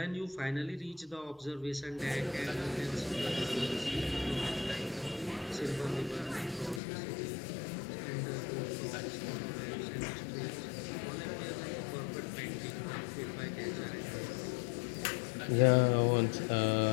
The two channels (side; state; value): right; drops out; at 6.8 s